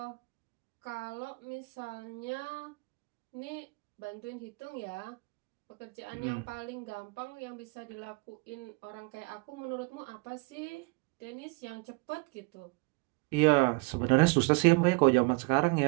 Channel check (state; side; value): quieter; left; 29.2 dB